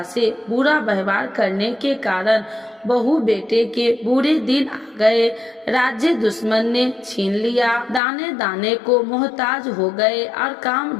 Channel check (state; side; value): drops out; right; at 8.0 s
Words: से बुरा व्यवहार करने के कारण बहू बेटे के बुरे दिन आ गए। राज्य दुश्मन ने छीन लिया। दाने दाने को मोहताज हो गए और काम